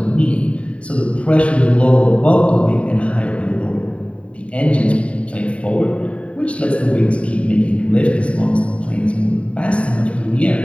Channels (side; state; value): right; late; 0.063 ms